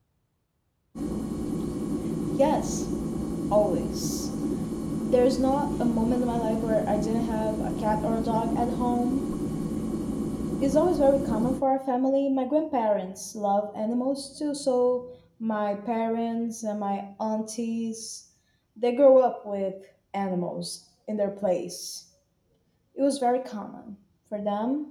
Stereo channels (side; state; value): both; identical; correlation 1.00